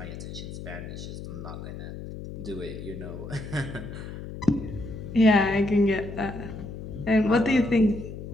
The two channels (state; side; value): noise; left; hum, 10 dB below the sound